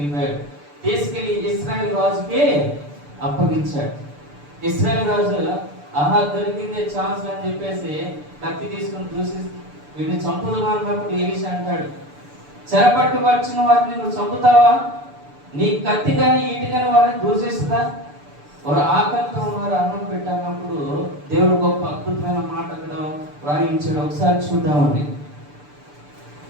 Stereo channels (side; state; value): left; late; 6.8 ms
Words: తీసుకెళ్లి ఇశ్రాయేల్ రాజుకి అప్పగించాడు. ఇశ్రాయేల్ రాజు ఆహా దొరికిందే ఛాన్స్ అని చెప్పేసి కత్తి తీసుకుని చూసి వీడిని చంపుదామా అన్నప్పుడు ఎలీషా అంటాడు, చెరపట్టు వచ్చిన వారిని నువ్వు చంపుతావా, నీ కత్తి కానీ ఈటి కానీ వారిని దూషిస్తుందా, వారు ఆకలితో ఉన్నారు, అన్నం పెట్టాలన్నప్పుడు దేవుడు గొప్ప అద్భుతమైన మాట అక్కడ రాయించాడు. ఒకసారి చూద్దామండి.